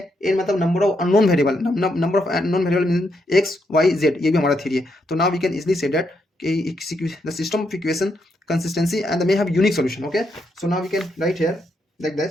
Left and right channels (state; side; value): normal; both; correlation 0.79